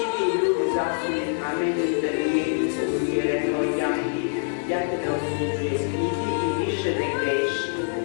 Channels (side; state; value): right; silent; 62 dB below the other